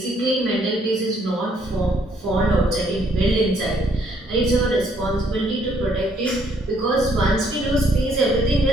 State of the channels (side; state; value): both; normal; correlation 0.68